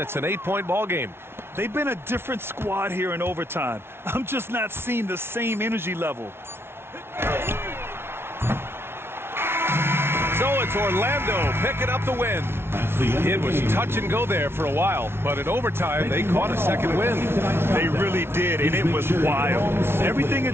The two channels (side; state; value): left; late; 0.12 ms